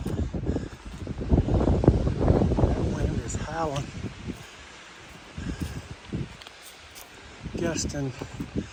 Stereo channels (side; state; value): both; identical; correlation 1.00